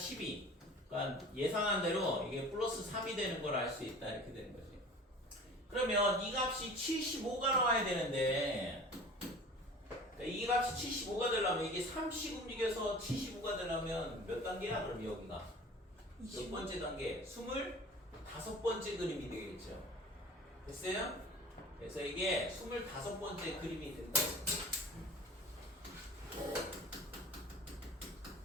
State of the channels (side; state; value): both; normal; correlation 0.43